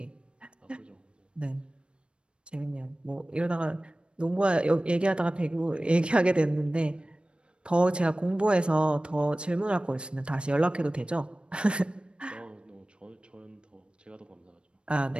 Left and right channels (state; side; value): late; left; 0.056 ms